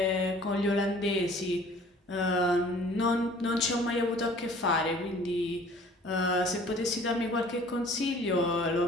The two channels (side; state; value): both; normal; correlation 0.51